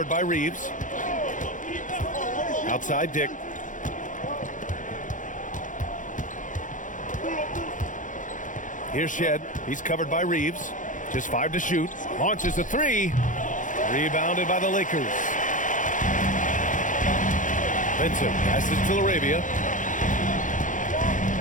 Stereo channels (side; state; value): right; late; 0.37 ms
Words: by Reeves. Outside Dick. Here's Shed. He's covered by Reeves. Just 5 to shoot. Launches a 3. Rebounded by the Lakers. Vincent passes to Laravia.